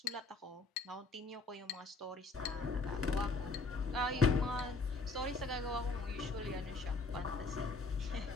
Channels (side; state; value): right; quieter; 3.6 dB